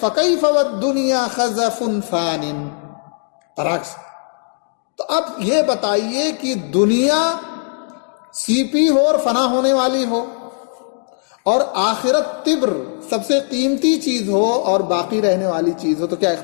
وَالدُّنْيَا خَزَفٌ فَانٍ، برعکس۔ تو اب یہ بتائیے کہ دنیا سیپی ہو اور فنا ہونے والی ہو، اور آخرت تبر سب سے قیمتی چیز ہو اور باقی رہنے والی چیز ہو، تو کیا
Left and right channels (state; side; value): silent; right; 67 dB below the other